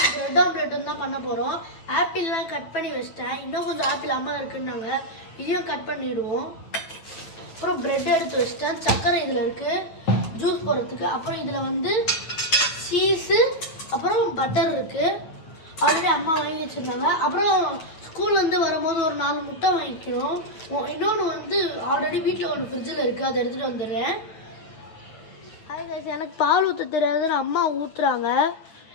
பிரெட் ஆம்லெட்டும் தான் பண்ண போறோம். ஆப்பிள்லாம் கட் பண்ணி வச்சிட்டேன். இன்னும் கொஞ்சம் ஆப்பிள் அம்மா இருக்குன்னாங்க. இதையும் கட் பண்ணிடுவோம். அப்புறம் பிரெட் எடுத்து வச்சிட்டேன். சக்கரை இதுல இருக்கு ஜூஸ் போடுறதுக்கு. அப்புறம் இதுல வந்து சீஸ் அப்புறம் பட்டர் இருக்கு. ஆல்ரெடி அம்மா வாங்கி வச்சிருந்தாங்க. அப்புறம் ஸ்கூல்ல இருந்து வரும்போது ஒரு 4 முட்டை வாங்கிக்கிறோம். இன்னொன்று வந்து ஆல்ரெடி வீட்டில் ஒன்று ஃப்ரிட்ஜில் இருக்கு, அதை எடுத்துட்டு வந்துடுறேன். எனக்கு பால் ஊற்ற தெரியாதுன்னு அம்மா ஊற்றுறாங்க.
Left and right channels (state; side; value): late; right; 9.3 ms